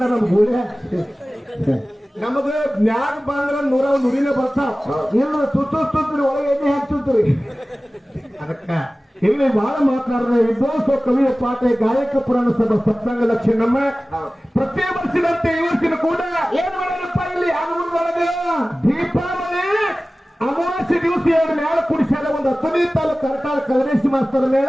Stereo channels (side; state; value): both; normal; correlation 0.97